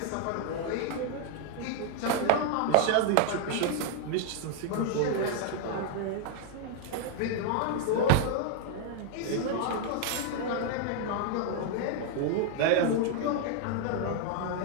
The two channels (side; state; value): both; different; correlation 0.00